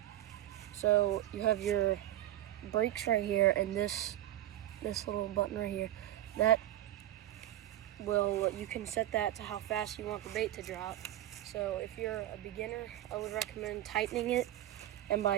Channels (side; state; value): left; quieter; 13.6 dB